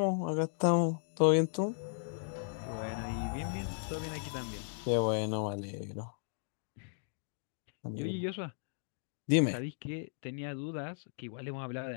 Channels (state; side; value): silent; right; digital silence